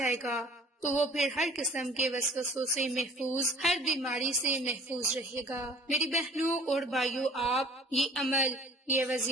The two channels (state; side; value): normal; both; correlation 0.49